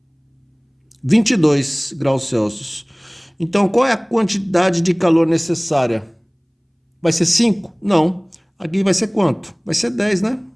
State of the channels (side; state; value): both; identical; correlation 1.00